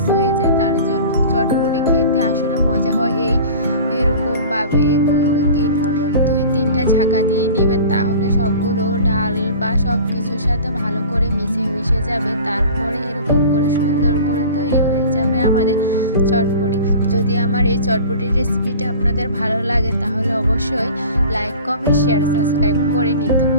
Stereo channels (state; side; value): inverted; both; correlation -0.40